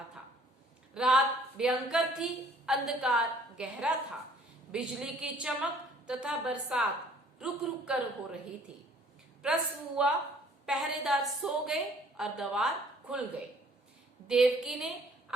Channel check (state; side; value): normal; both; correlation 0.57